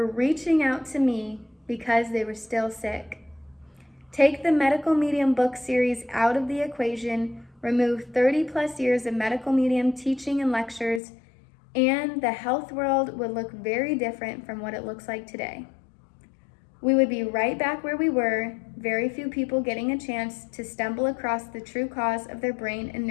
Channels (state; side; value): drops out; right; at 11.0 s